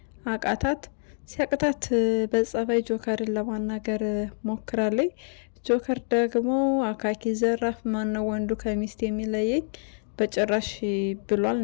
አቃታት። ሲያቅታት በጸባይ ጆከርን ለማናገር ሞክራለች። ጆከር ደግሞ አካኪ ዘራፍ፣ ማነው ወንዱ ከሚስት የሚለየኝ በጭራሽ ብሏል።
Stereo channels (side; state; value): right; silent; 56 dB below the other